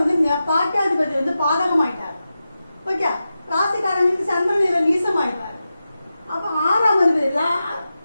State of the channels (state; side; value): inverted; both; correlation -0.91